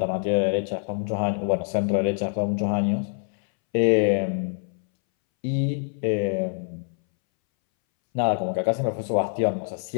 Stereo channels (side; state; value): right; silent; 62 dB below the other